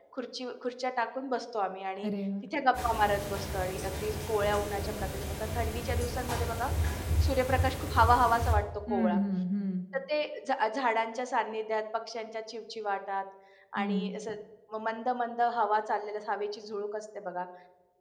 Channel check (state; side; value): identical; both; correlation 1.00